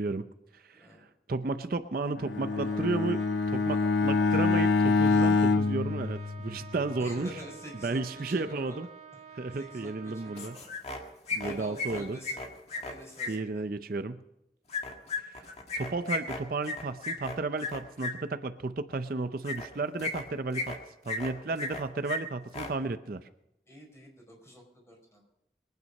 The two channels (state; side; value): normal; both; correlation 0.46